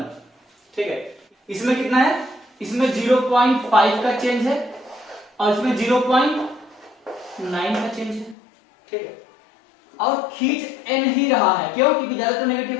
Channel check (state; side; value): drops out; right; at 8.3 s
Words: ठीक है, इसमें कितना है, इसमें 0.5 का चेंज है और इसमें 0.9 का चेंज है। ठीक है, और खींच N ही रहा है, क्यों, क्योंकि ज्यादा तो नेगेटिव